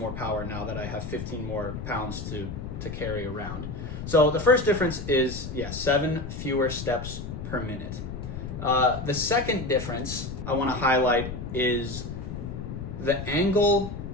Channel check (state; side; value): noise; left; rumble, 7 dB below the sound